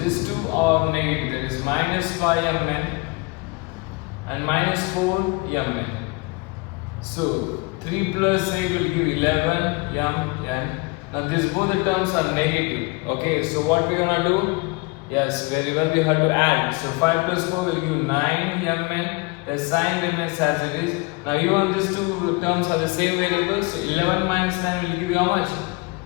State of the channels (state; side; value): quieter; right; 27.5 dB